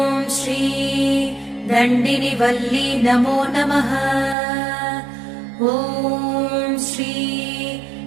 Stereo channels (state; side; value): drops out; left; at 4.4 s